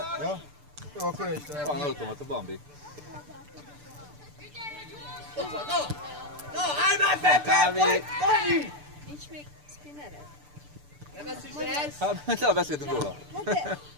Ja? Jó, akkor én is Van automata, Bambi. No, állj már be! Kávé. Dani! Nincs még spinnered? Nem ezt is ez? Hát, le beszéltünk róla.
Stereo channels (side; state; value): left; late; 6.8 ms